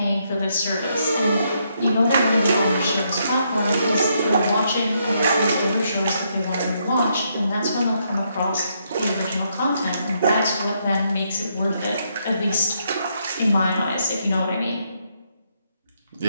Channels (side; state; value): both; inverted; correlation -0.76